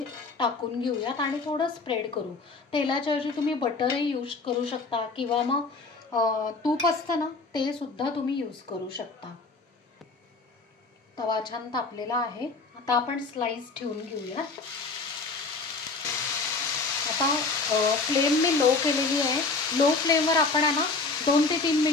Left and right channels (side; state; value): right; quieter; 4.0 dB